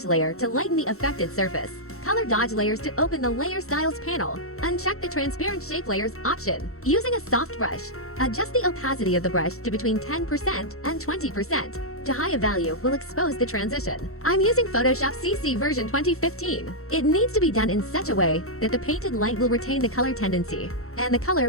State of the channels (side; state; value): right; late; 0.63 ms